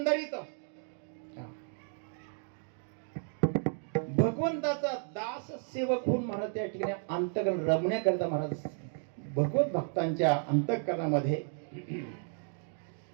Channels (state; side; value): silent; left; 56 dB below the other